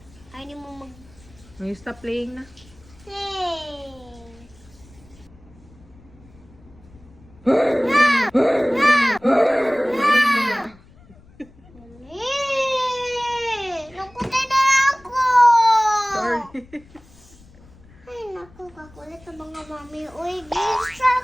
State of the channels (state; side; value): noise; left; rumble, 25 dB below the sound